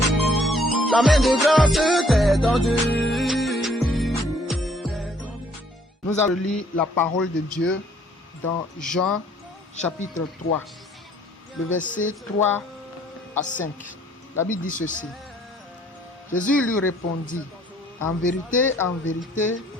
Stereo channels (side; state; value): both; normal; correlation 0.62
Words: La main de grâce t'est tendue. Nous allons lire la parole de Dieu dans Jean chapitre 3, le verset 3 à 5. La Bible dit ceci. Jésus lui répondit, en vérité,